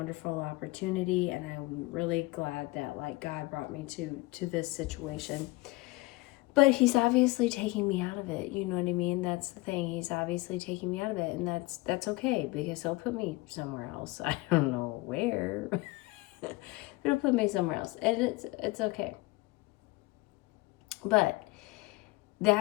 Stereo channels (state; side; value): quieter; right; 21.7 dB